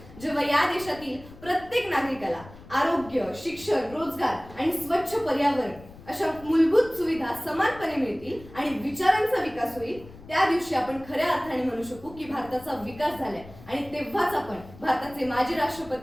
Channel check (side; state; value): left; noise; rumble, 19 dB below the sound